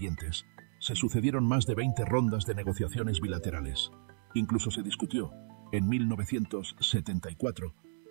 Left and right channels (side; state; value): left; silent; digital silence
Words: se sucedieron más de 20 rondas de negociaciones bilaterales. Incluso se discutió, en 1974,